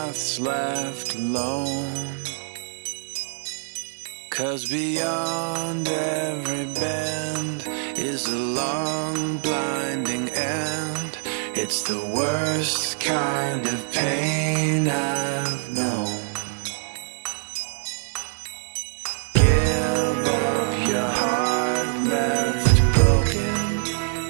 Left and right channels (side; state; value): left; silent; digital silence